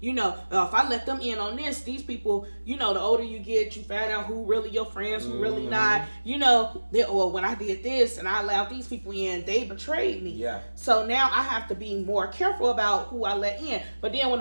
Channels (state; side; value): inverted; both; correlation -1.00